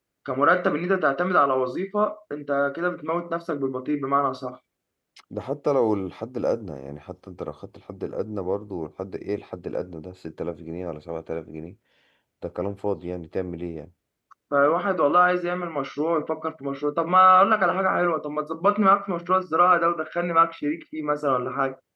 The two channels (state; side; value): identical; both; correlation 1.00